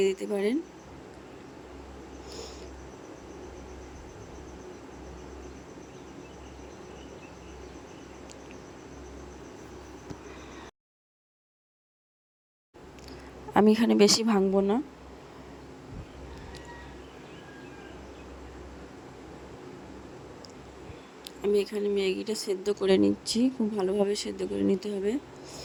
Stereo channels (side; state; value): both; identical; correlation 1.00